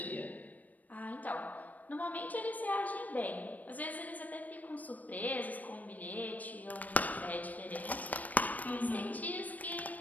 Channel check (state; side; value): late; right; 0.077 ms